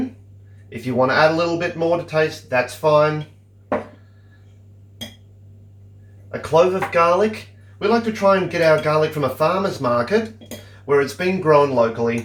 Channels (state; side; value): identical; both; correlation 1.00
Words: If you want to add a little bit more to taste, that's fine. A clove of garlic. We like to try and get our garlic from a farmer's market where it's been grown